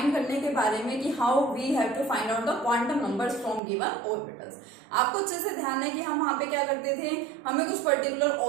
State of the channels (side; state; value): left; drops out; at 3.6 s